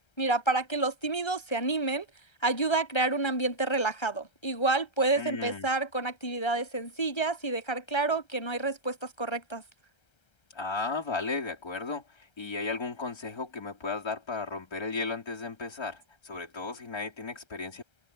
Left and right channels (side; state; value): right; late; 1.3 ms